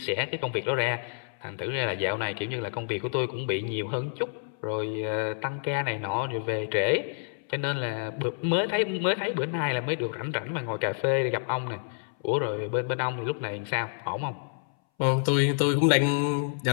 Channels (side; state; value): right; silent; 59 dB below the other